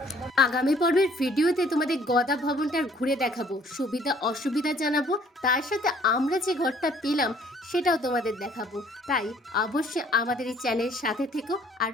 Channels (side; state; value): both; normal; correlation 0.59